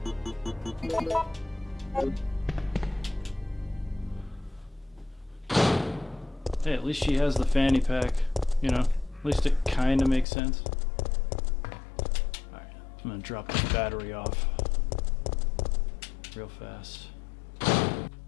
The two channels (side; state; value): right; drops out; at 10.2 s